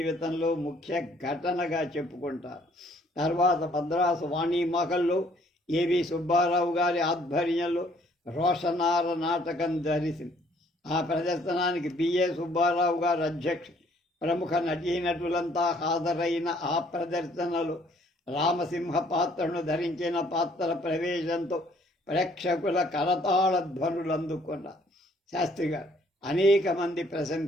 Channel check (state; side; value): normal; both; correlation 0.62